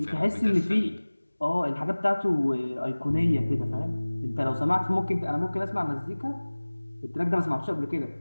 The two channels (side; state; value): both; inverted; correlation -1.00